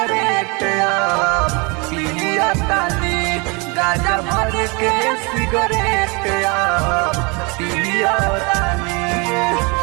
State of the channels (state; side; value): quieter; left; 29.5 dB